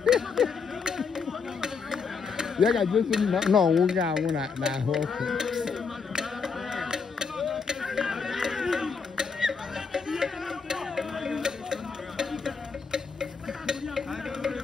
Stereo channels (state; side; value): quieter; right; 5.4 dB